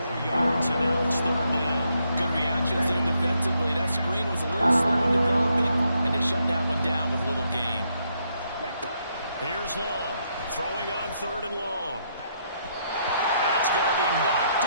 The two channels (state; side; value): inverted; both; correlation -0.76